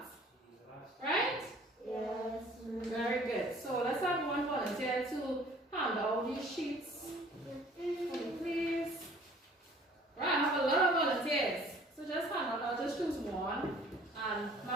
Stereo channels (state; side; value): normal; both; correlation 0.53